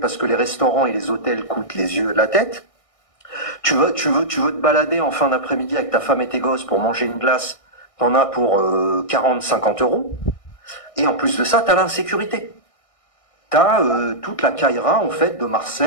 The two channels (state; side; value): late; right; 1.6 ms